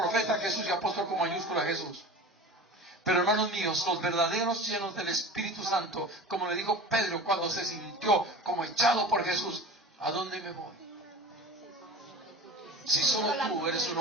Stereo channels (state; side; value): normal; both; correlation 0.36